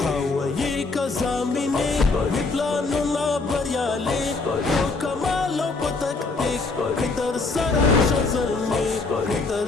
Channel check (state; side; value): quieter; right; 3.7 dB